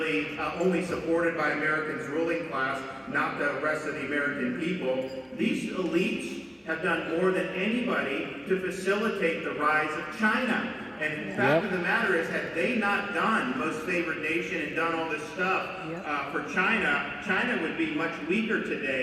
only supported by Americans' ruling class, not the rest of the American people. These elites have done more than anybody to facilitate the rise of China. And the fact of the matter is, had they not done most favored nation and done all this stuff for China, China would be much weaker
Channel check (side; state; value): both; identical; correlation 1.00